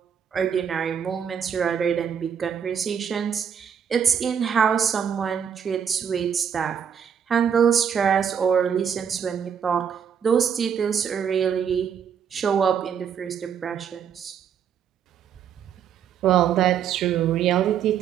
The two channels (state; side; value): quieter; left; 7.9 dB